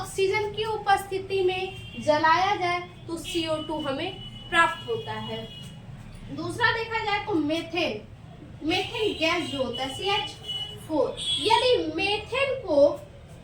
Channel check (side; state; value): both; identical; correlation 1.00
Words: की उपस्थिति में जलाया जाए तो CO2 हमें प्राप्त होता है। दूसरा देखा जाए तो मेथेन, मेथेन गैस जो होता है CH4, यदि मेथेन को